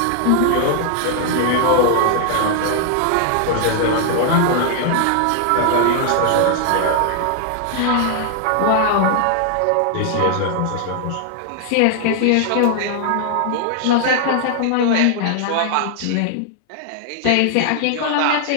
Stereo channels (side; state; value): both; different; correlation 0.00